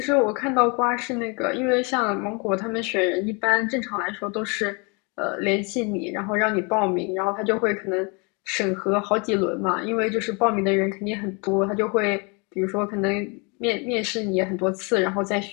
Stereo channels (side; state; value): right; quieter; 31.6 dB